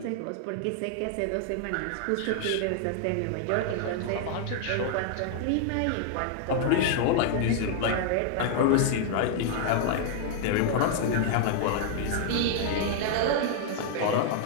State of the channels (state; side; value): different; both; correlation 0.00